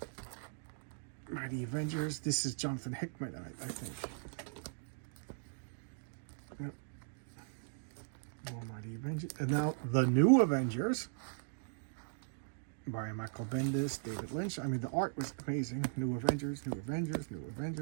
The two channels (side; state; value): left; silent; digital silence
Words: Mighty Avengers. This is Jonathan Hickman, I think. Yep. More Mighty Avengers. And now the New Avengers by Michael Bendis, David Lynch. I mean, the art was amazing. New Avengers, New Avengers, New